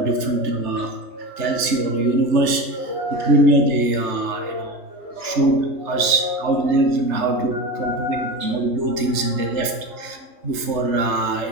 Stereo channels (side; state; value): left; late; 3.3 ms